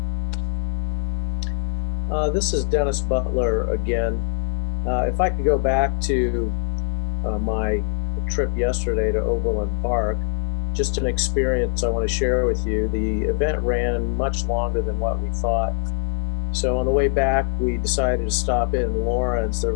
This is Dennis Butler again. If I could go back to my trip yesterday to Overland Park, just an experience I want to share with you. The event ran much longer than what we thought. So on the way back, we decided to stop in Lawrence. There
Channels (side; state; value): right; silent; digital silence